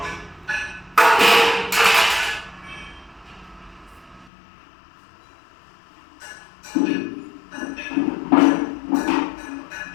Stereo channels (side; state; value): right; drops out; at 4.3 s